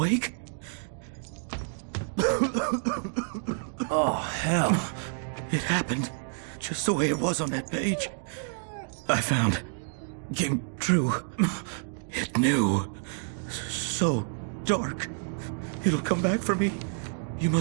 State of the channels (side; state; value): left; silent; digital silence